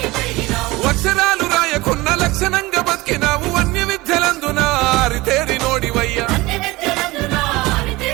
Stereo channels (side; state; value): left; quieter; 20.9 dB